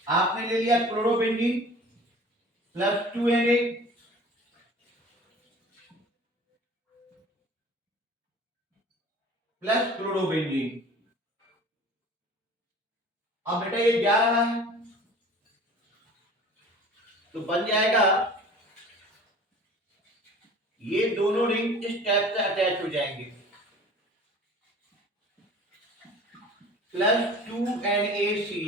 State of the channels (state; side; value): normal; both; correlation 0.44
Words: आपने ले लिया chlorobenzene plus 2Na plus chlorobenzene. अब बेटा ये जा रहा है तो बन जाएगा ये दोनों रिंग इस टाइप से अटैच हो जाएंगे प्लस